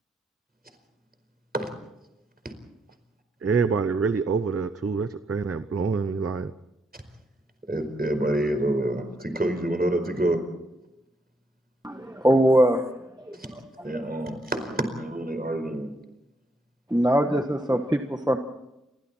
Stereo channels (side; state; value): both; normal; correlation 0.76